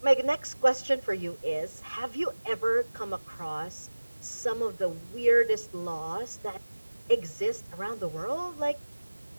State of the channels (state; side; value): inverted; both; correlation -1.00